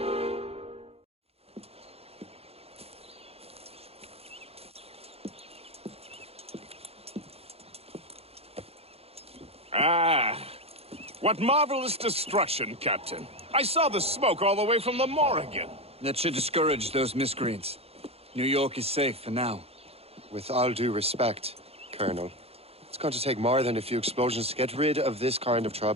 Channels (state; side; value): late; left; 0.29 ms